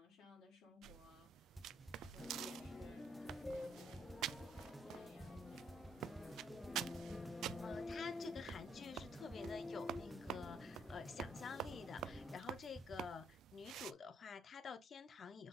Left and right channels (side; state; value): both; normal; correlation 0.71